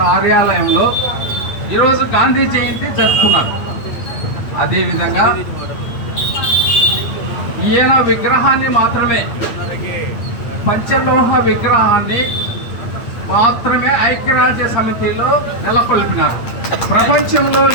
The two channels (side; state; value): right; late; 8.9 ms